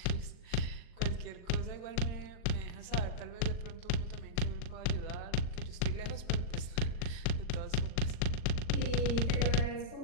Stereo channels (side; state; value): right; late; 39 ms